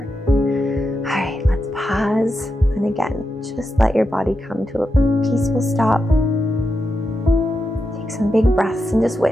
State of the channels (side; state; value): both; normal; correlation 0.87